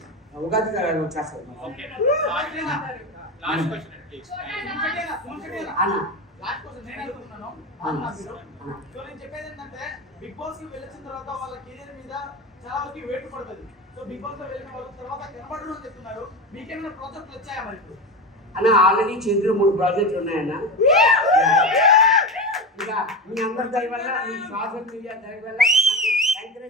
ఉగాది వచ్చేస్తుంది. నేను చెప్పేది ఏంటంటే బిగ్ బాస్ కి వెళ్ళిన తర్వాత వాళ్ళ కెరీర్ మీద చాలా వరకు వెయిట్ పడుతుంది. సో బిగ్ బాస్ లో వెళ్ళిన వాళ్ళ తర్వాత కనబడరు అని చెప్తున్నారు. మీకేమైనా ప్రాజెక్టులు వచ్చాయా మరి? అన్న ఆల్రెడీ చేతిలో 3 ప్రాజెక్టులు ఉన్నాయన్న. ఇంకా మీ అందరి దయ వల్ల, మీ సోషల్ మీడియా దయ వల్ల నాకు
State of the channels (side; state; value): both; normal; correlation 0.22